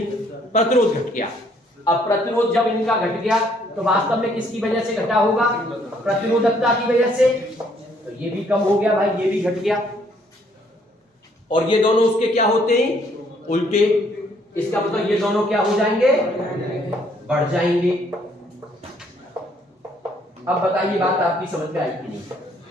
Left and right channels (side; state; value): both; normal; correlation 0.66